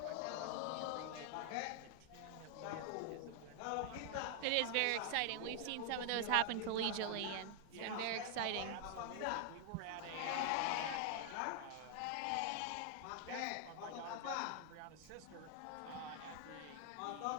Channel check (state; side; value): different; both; correlation 0.00